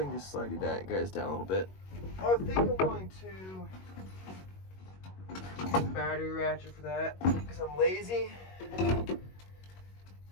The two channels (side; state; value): right; late; 21 ms